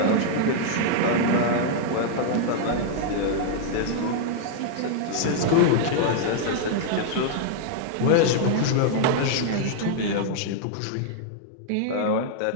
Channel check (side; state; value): both; different; correlation -0.01